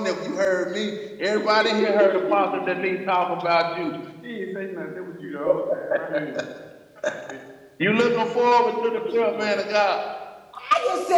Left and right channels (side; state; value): both; identical; correlation 1.00